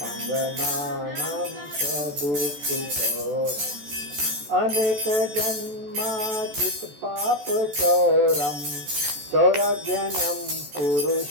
चोरम अनेक जन्माचित पाप चौरम चौरज्ञानम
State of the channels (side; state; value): left; late; 14 ms